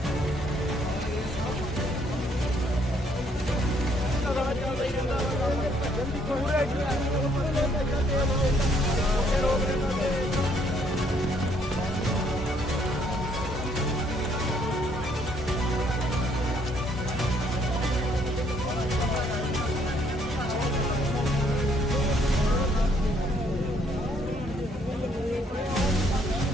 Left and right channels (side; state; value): both; normal; correlation 0.67